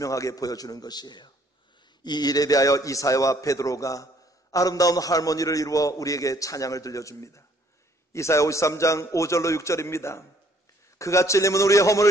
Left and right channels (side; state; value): both; normal; correlation 0.63